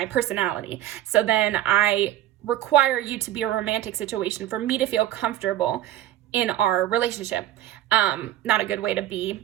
personality. So then I require you to be a romantic situation for me to feel comfortable in our relationship. Not a good way to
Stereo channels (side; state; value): left; quieter; 13.0 dB